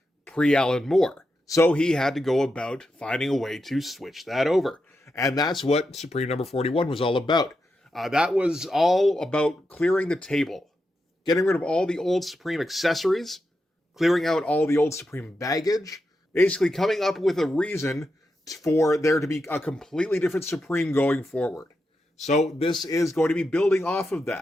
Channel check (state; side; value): normal; both; correlation 0.87